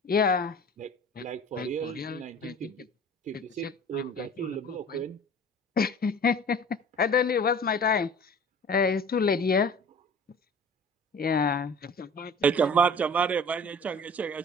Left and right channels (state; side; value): normal; both; correlation 0.44